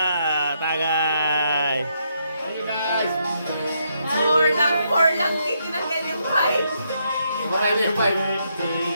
Tagay. Hey guys. Four lang. Tinanggal yung five. Kumakain na yung 5.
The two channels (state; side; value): inverted; both; correlation -0.77